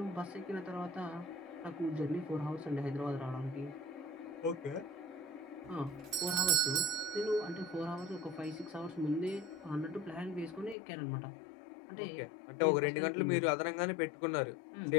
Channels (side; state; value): right; drops out; at 10.8 s